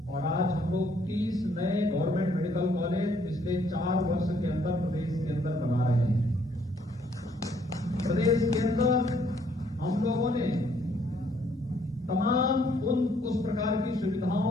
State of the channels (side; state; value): both; normal; correlation 0.66